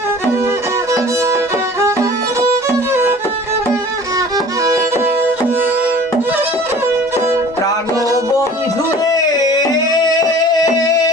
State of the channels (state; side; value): normal; both; correlation 0.45